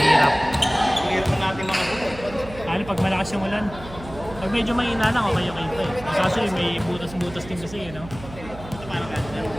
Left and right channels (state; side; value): noise; right; hum, 15 dB below the sound